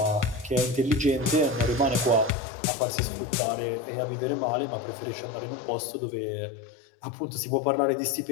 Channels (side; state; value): right; drops out; at 2.4 s